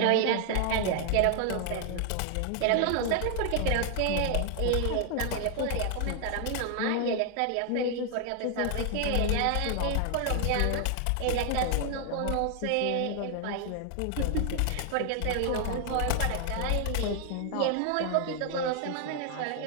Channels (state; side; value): different; both; correlation 0.00